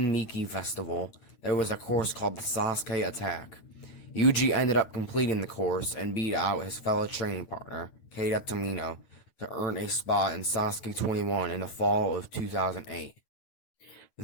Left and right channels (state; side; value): late; right; 9.1 ms